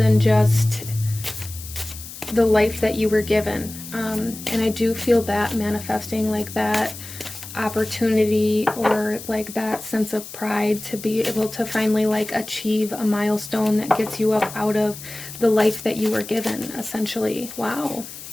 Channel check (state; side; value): noise; left; hiss, 13 dB below the sound